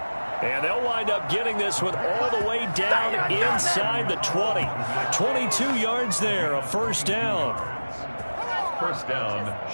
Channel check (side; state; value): both; inverted; correlation -1.00